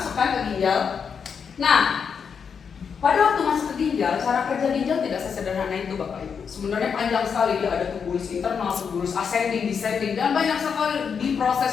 ke ginjal. Nah, pada waktu masuk ke ginjal, cara kerja ginjal tidak sesederhana itu Bapak Ibu. Sebenarnya panjang sekali, dia ada tubulus internal, tubulus ascending, descending, dan banyak sekali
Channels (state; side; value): quieter; right; 6.5 dB